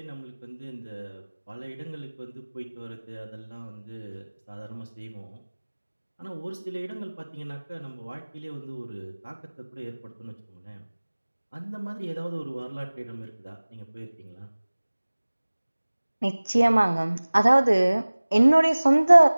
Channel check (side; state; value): both; inverted; correlation -1.00